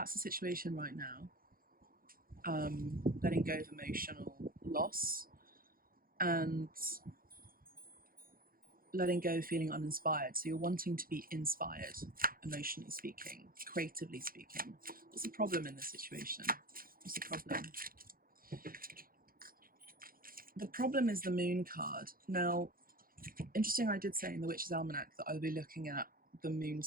the situation right now. Letting go of emotional loss and letting go, feeling uninspired. So you're wanting to be inspired, emotionally speaking, creatively speaking. What's the problem in this situation? What's the problem? The problem is the Moon card. Now, interesting, I did say in the Witch's Almanac that I'll be looking at the moon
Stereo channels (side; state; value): left; late; 0.42 ms